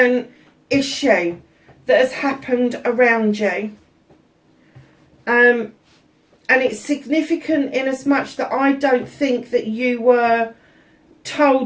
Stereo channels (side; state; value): both; identical; correlation 1.00